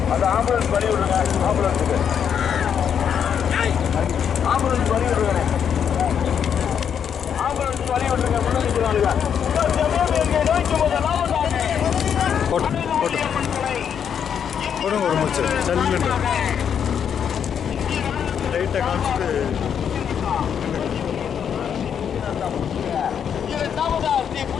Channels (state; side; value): quieter; right; 8.0 dB